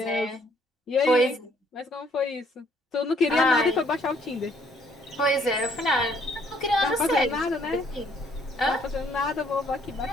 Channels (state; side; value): normal; both; correlation 0.65